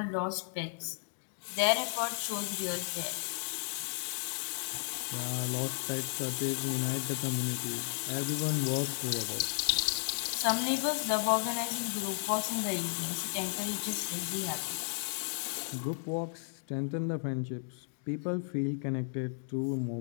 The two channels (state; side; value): silent; right; digital silence